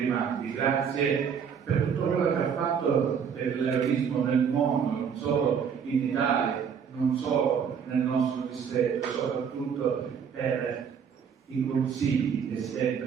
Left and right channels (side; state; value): left; quieter; 7.1 dB